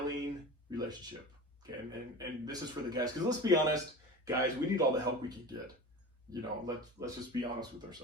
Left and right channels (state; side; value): normal; both; correlation 0.33